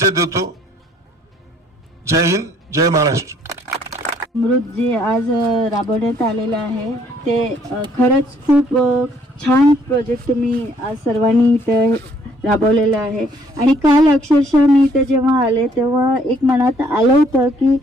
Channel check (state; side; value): normal; both; correlation 0.64